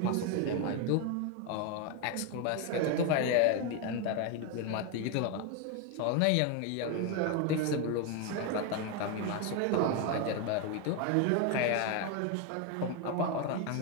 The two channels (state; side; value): different; both; correlation 0.02